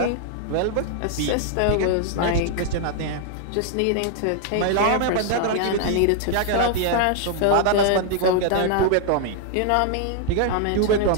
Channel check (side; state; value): both; different; correlation 0.00